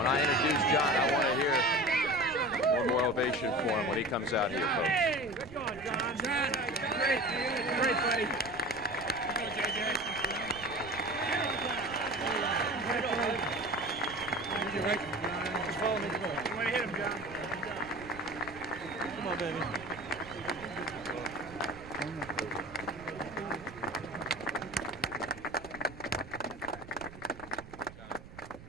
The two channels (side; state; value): right; noise; rumble, 17 dB below the sound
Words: I introduce John, I want to hear one more ovation for him when he comes out here, folks. Hey, good going, John. John, great, great, buddy. Go, JJ. Right. Just follow me. You want to hit him, John? Come on, baby.